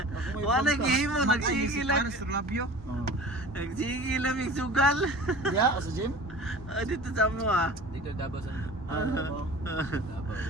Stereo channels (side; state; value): both; normal; correlation 0.40